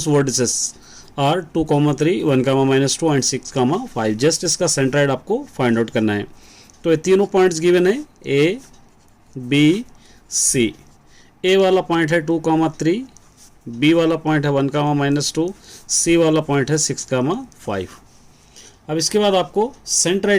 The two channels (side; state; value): both; identical; correlation 1.00